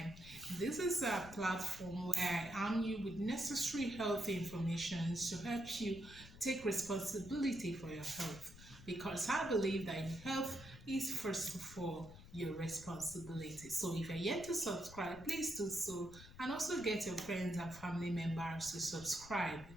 this is a platform where I arm you with necessary health information to help you take responsibility for your health. Because I believe that health is first of all your responsibility. So if you're yet to subscribe, please do so, and also get your friends and family members to subscribe.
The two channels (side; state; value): left; noise; rumble, 17 dB below the sound